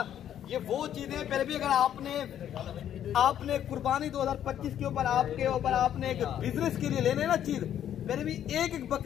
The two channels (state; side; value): quieter; right; 10.4 dB